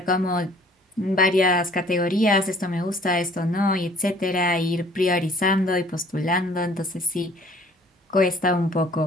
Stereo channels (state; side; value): normal; both; correlation 0.54